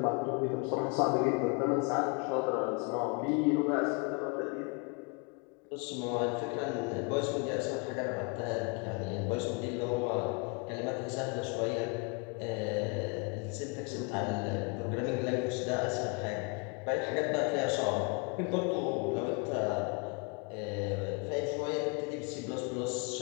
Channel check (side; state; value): right; quieter; 32.2 dB